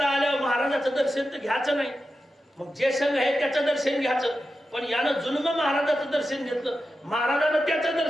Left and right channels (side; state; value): both; normal; correlation 0.91